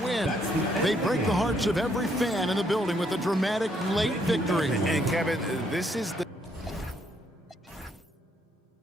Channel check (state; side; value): normal; both; correlation 0.71